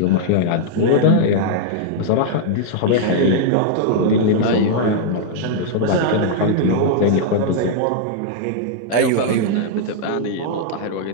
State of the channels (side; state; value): both; different; correlation -0.01